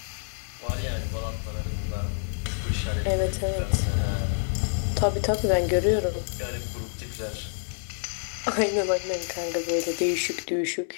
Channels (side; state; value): right; silent; 59 dB below the other